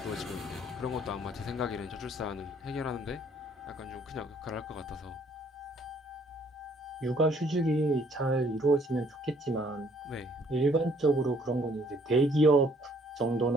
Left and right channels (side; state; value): both; normal; correlation 0.63